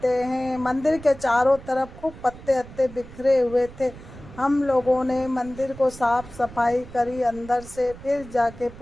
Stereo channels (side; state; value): right; noise; rumble, 17 dB below the sound